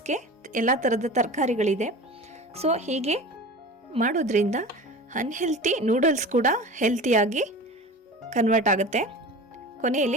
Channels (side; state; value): both; normal; correlation 0.35